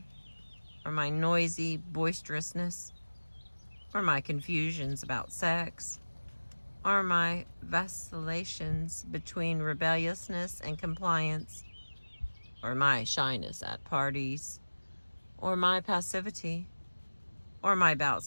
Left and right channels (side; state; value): both; inverted; correlation -1.00